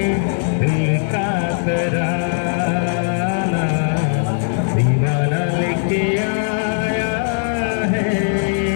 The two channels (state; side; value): silent; right; 63 dB below the other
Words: दिल का तराना, दीवाना लेके आया है